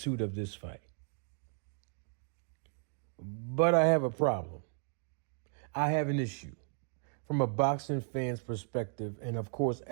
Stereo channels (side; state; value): left; silent; 54 dB below the other